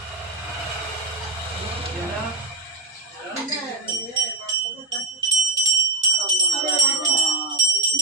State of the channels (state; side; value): quieter; left; 3.3 dB